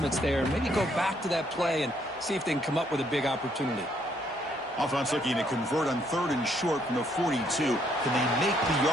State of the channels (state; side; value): normal; both; correlation 0.70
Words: there, maybe go back to that play and see if they can come up with a big opportunity. Offense looking to convert on 3rd and short from the 42. Can they make the